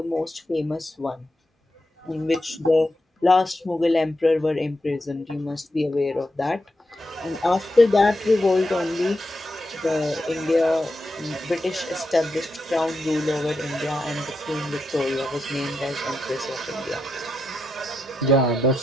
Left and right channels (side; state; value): both; normal; correlation 0.86